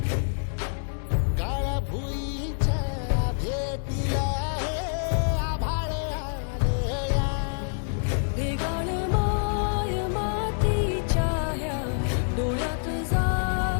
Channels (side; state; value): right; silent; 60 dB below the other